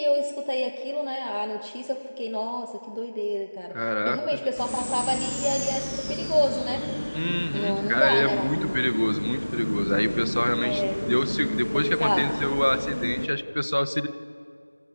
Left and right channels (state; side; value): inverted; both; correlation -1.00